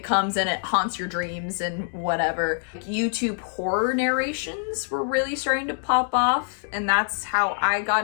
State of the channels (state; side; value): silent; right; 59 dB below the other